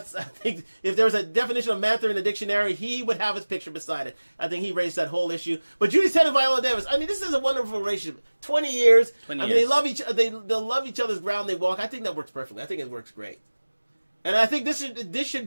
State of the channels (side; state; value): both; inverted; correlation -1.00